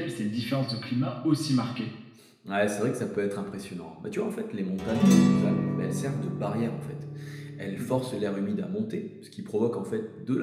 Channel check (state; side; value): identical; both; correlation 1.00